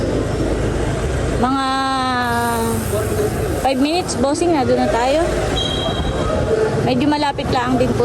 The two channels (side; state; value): both; identical; correlation 1.00